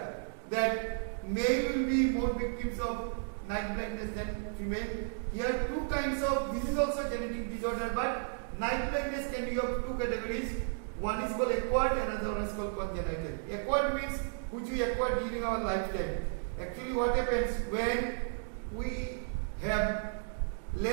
that male will be more victims of night blindness than female. Here two kinds of, this is also genetic disorder, but night blindness can be of two categories. One is called acquired, another one is called congenital. Acquired means which we acquired during our lifetime. Actually what happens when we have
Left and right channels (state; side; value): silent; left; digital silence